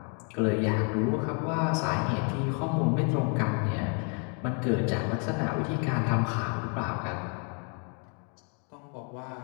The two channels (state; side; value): quieter; right; 35.5 dB